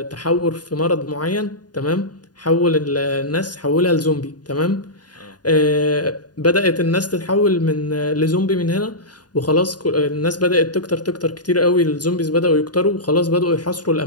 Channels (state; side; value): late; right; 0.69 ms